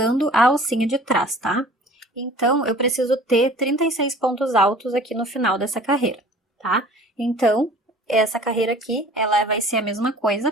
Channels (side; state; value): both; normal; correlation 0.47